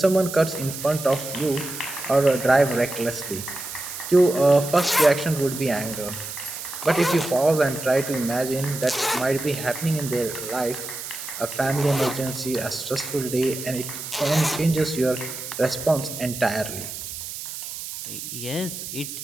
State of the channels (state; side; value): noise; right; hiss, 9 dB below the sound